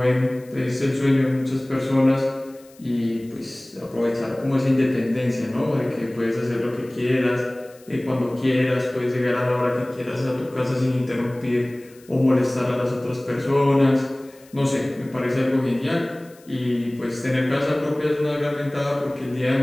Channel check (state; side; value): noise; left; hiss, 27 dB below the sound